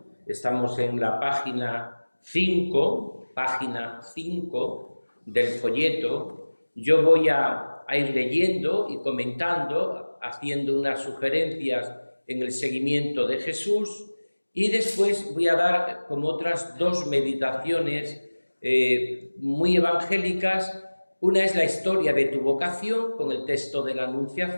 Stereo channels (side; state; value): both; inverted; correlation -1.00